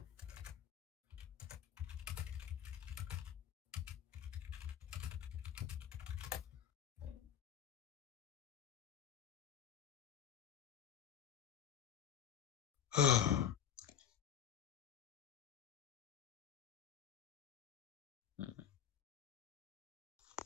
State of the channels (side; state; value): right; quieter; 9.1 dB